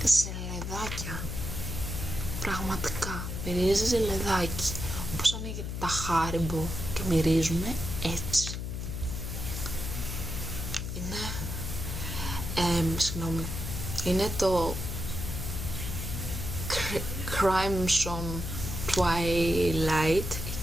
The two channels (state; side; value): noise; left; hum, 4 dB below the sound